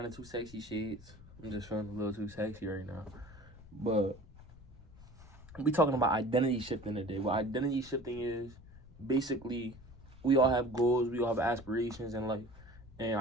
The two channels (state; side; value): noise; left; rumble, 20 dB below the sound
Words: the too sexy shades. I'm just feeling a little too sexy right now. But we talking about identity shifting today. What identity shifting is, basically, we all have goals, we all have aspirations in life. And